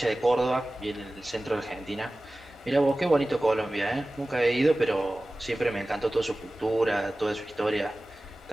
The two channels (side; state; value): both; normal; correlation 0.97